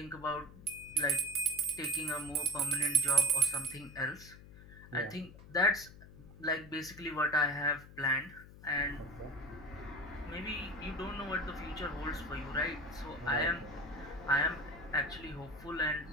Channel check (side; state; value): left; noise; hum, 18 dB below the sound